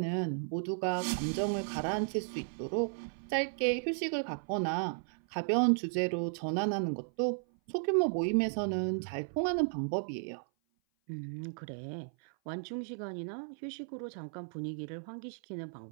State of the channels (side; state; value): left; silent; 55 dB below the other